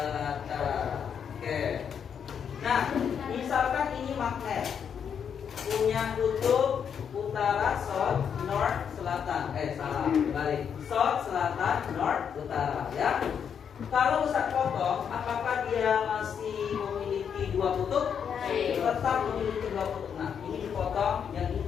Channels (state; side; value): quieter; right; 7.6 dB